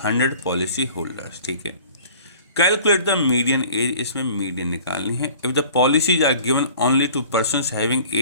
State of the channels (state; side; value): inverted; both; correlation -0.47